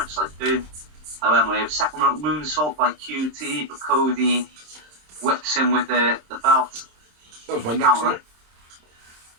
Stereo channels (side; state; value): left; late; 26 ms